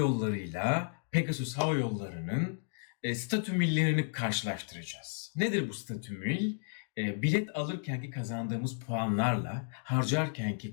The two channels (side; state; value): right; silent; digital silence